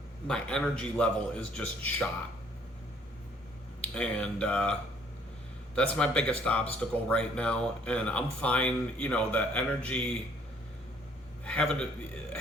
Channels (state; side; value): normal; both; correlation 0.62